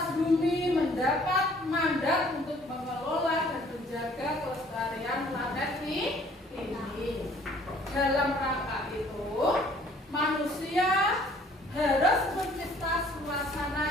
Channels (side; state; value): both; normal; correlation 0.57